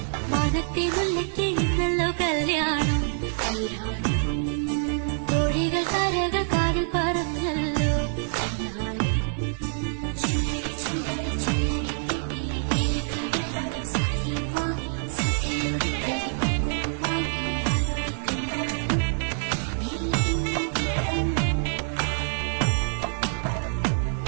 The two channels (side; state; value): left; silent; digital silence